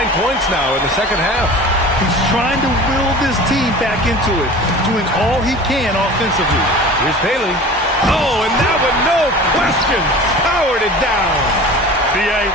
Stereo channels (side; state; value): both; normal; correlation 0.39